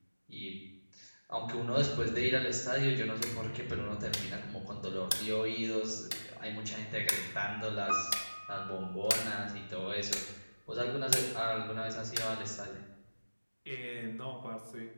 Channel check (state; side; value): inverted; both; correlation -1.00